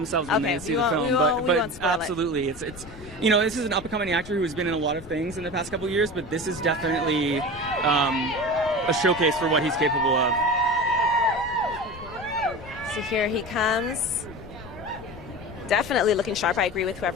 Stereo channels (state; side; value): noise; left; rumble, 17 dB below the sound